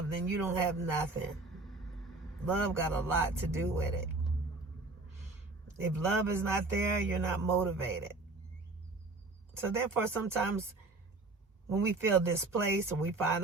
then you don't have nothing. Love got a lot to do with it. If love is not there, you're not motivated. So therefore, sometimes when we feel displaced or we find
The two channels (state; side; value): quieter; left; 3.3 dB